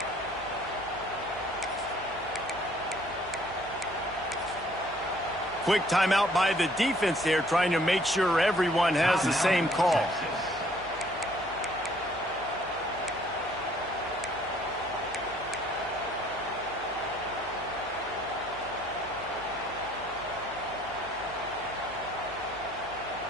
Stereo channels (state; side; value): noise; left; hum, 19 dB below the sound